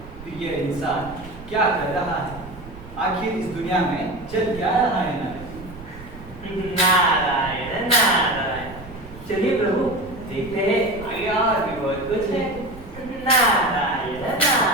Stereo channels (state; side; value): noise; right; rumble, 16 dB below the sound